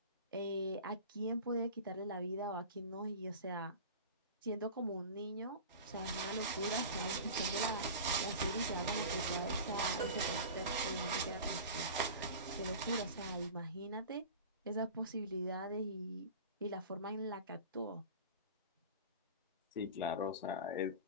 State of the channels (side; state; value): both; inverted; correlation -0.35